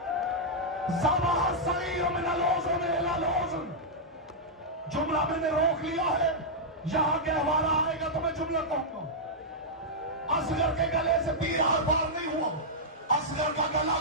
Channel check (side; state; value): both; normal; correlation -0.08